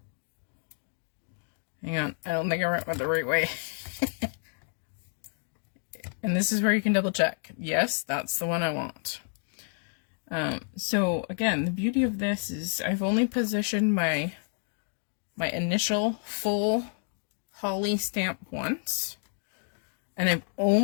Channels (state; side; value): silent; right; 58 dB below the other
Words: on, I don't think I went the right way. And this is where you can double check. Yes, that's the one I want. So again, the beauty of this is I've only positioned my initial full holly stamp once, and I've